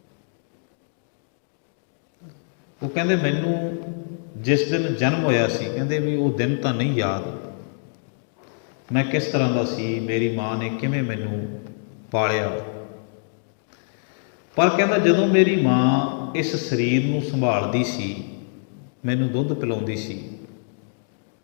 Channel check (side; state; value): right; silent; digital silence